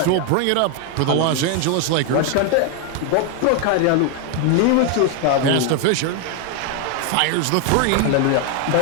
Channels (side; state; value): both; different; correlation 0.01